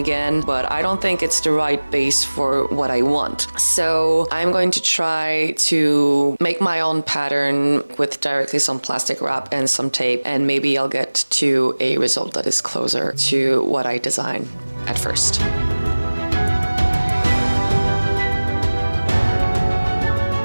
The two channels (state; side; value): inverted; both; correlation -1.00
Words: but I don't think it's the right base for what I want. So I'm going to try to make my own pattern with directly some plastic wrap and some tape, and maybe I'll get to a result that is closer to what I designed at first.